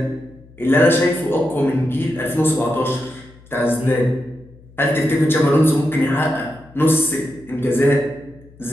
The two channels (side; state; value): left; noise; hum, 24 dB below the sound